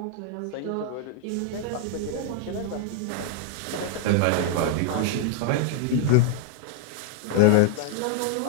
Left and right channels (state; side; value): different; both; correlation 0.00